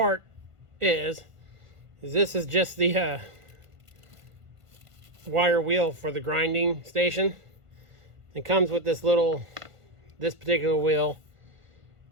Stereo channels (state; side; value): late; left; 1.5 ms